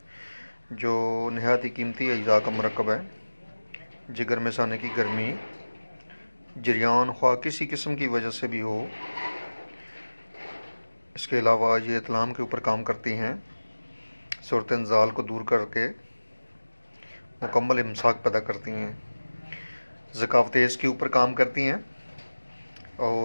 जो नहायत ही कीमती अज्जा का मरकब है। जिगर में साने की गर्मी, जरियान ख्वाह किसी किस्म की वजह से भी हो। इसके अलावा ये इत्लाम के ऊपर काम करती हैं, सूरत इंजाल को दूर करके मुकम्मल इमसाक पैदा करती हैं, ज़कावत तेज़ के ऊपर काम करती हैं।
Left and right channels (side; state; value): both; inverted; correlation -1.00